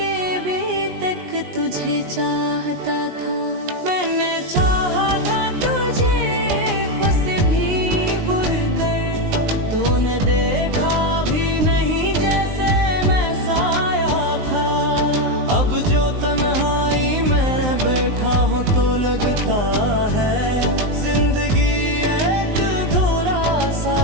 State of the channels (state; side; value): late; left; 19 ms